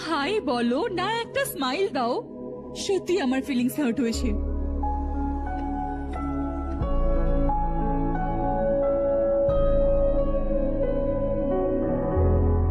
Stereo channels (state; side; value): identical; both; correlation 1.00